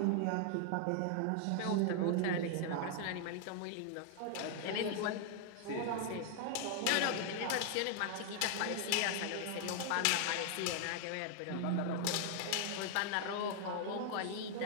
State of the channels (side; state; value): both; different; correlation 0.00